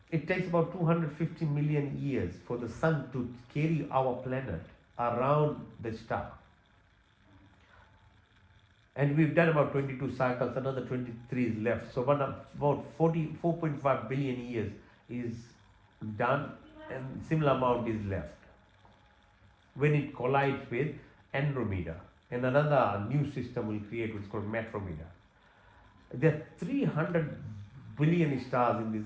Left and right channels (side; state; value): both; identical; correlation 1.00